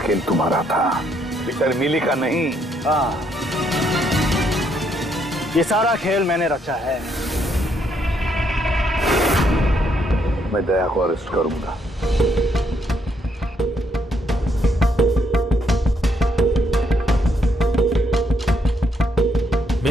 तुम्हारा था, बेचारी मिली का नहीं। हाँ, ये सारा खेल मैंने रचा है। मैं दया को अरेस्ट करूंगा।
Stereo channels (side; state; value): both; normal; correlation 0.73